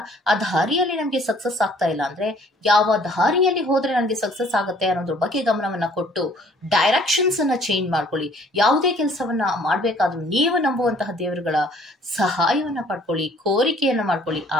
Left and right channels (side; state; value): both; normal; correlation 0.57